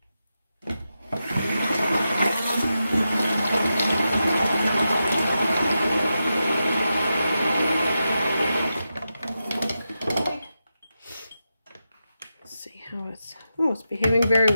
It's behaving very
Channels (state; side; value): inverted; both; correlation -0.89